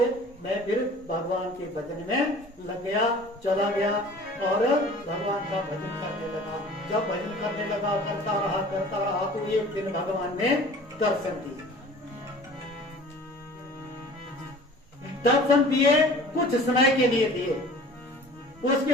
मैं फिर भगवान के भजन में लग गया, चला गया और भगवान का भजन करने लगा। जब भजन करने लगा, करता रहा तो एक दिन भगवान ने दर्शन दिए। दर्शन दिए, कुछ समय के लिए दिए। उसके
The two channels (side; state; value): both; normal; correlation 0.45